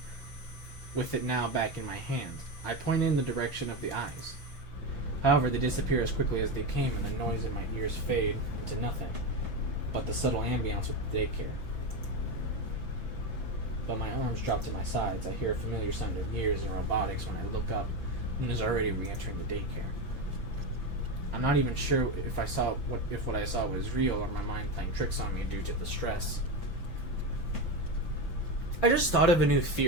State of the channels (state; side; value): late; right; 6.0 ms